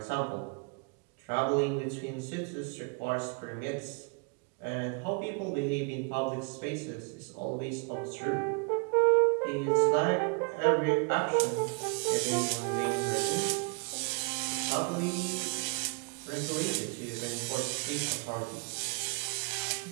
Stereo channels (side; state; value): left; quieter; 35.8 dB